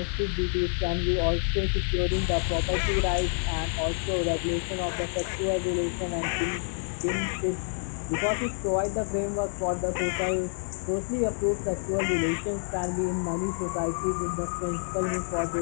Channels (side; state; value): right; silent; digital silence